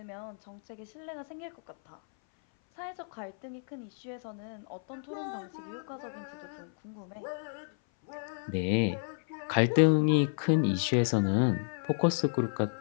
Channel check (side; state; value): right; silent; 57 dB below the other